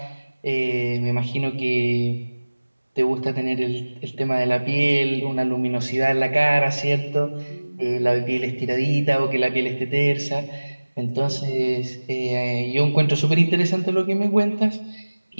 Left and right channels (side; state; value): both; inverted; correlation -1.00